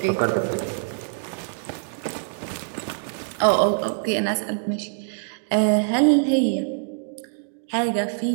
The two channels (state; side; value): silent; left; digital silence